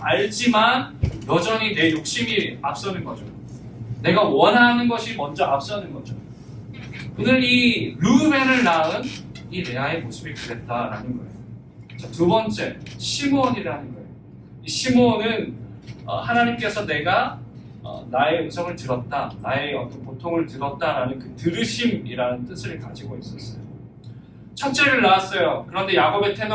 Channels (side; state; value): both; identical; correlation 1.00